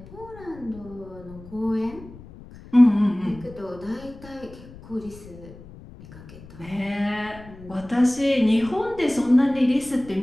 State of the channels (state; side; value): noise; left; rumble, 18 dB below the sound